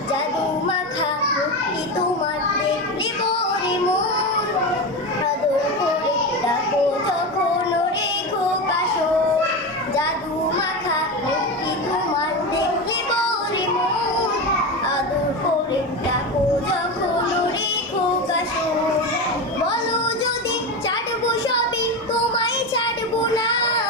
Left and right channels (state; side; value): normal; both; correlation 0.20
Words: জাদু মাখা মুক্তি তোমার দেখলে পরে মন, আদর করে ডাকো যখন রেখো কাশো। জাদু মাখা মুক্তি তোমার দেখলে পরে মন, আদর করে ডাকো যখন রেখো কাশো। বলো যদি ছাড়বো সবই, তোমায় ছাড়বো না।